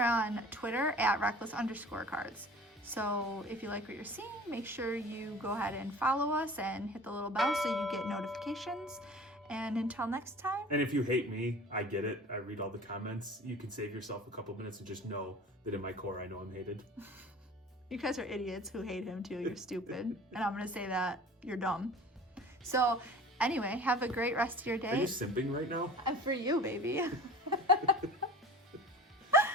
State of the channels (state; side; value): normal; both; correlation 0.42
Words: on Twitter at Reckless_Cards. So if you like what you're seeing, make sure you go ahead and follow us and hit the little bell so you get notifications. And until next time. And if you hate me, I get it. I read all the comments. You can save yourself a couple minutes and just know that in my core, I know I'm hated. You guys are idiots who hate him too. You're stupid. And I'm going to say that you're dumb. So anyway, have a great rest of your day. Are you simping right now? And for you, baby.